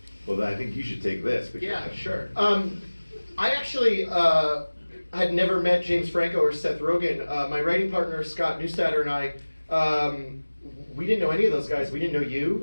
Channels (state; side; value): inverted; both; correlation -1.00